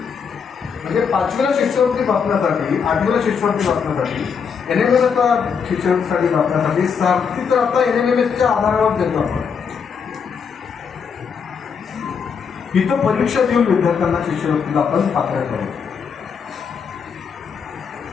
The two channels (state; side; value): quieter; right; 6.4 dB